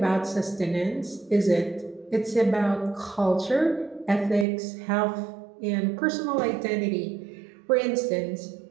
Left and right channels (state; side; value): drops out; left; at 4.5 s